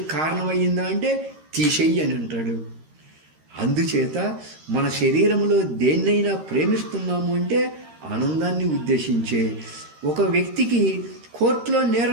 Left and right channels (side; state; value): left; late; 13 ms